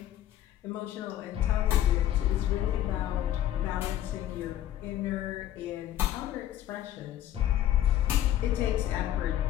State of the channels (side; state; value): right; quieter; 12.3 dB